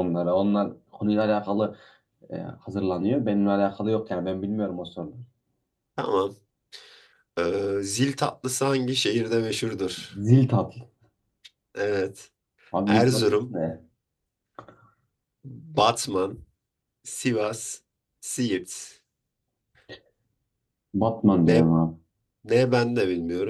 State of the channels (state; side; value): identical; both; correlation 1.00